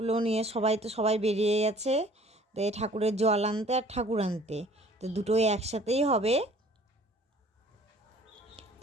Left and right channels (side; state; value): both; normal; correlation 0.53